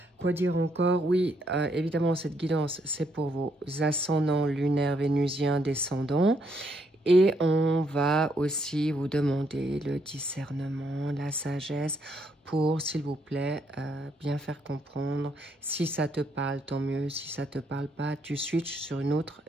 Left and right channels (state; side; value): normal; both; correlation 0.73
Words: Quoi dire encore? Oui, évidemment, cette guidance, c'est pour vos ascendants lunaires, vénusiens, descendants. Et on va aussi vous demander le discernement, la sagesse pour, s'il vous plaît, bien faire comprendre. Si ça te parle, tant mieux. Si ça te parle pas, tu switches sur une autre